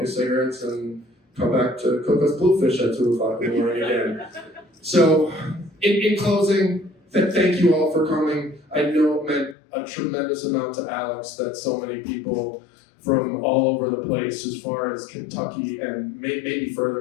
his cigarettes and come back to cook us bluefish at 2 o'clock in the morning again. So, in closing, thank you all for coming. I know it meant a tremendous amount to Alex that so many people from all over the place, as far as Kentucky and maybe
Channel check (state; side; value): drops out; right; at 9.6 s